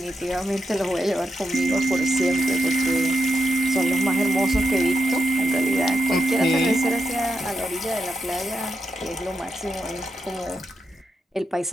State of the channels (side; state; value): both; normal; correlation 0.85